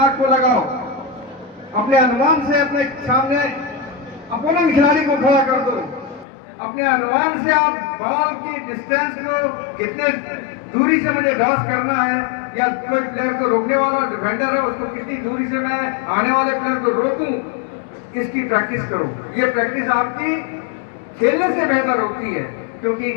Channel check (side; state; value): right; drops out; at 6.2 s